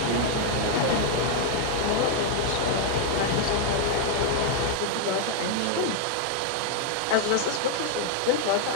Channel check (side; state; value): both; different; correlation 0.00